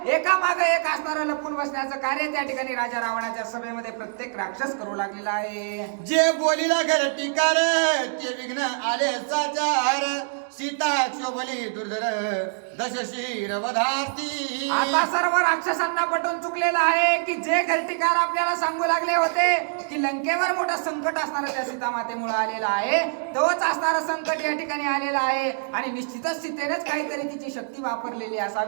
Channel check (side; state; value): left; silent; digital silence